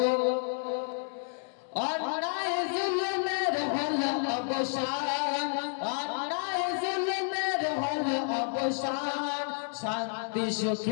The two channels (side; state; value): right; silent; digital silence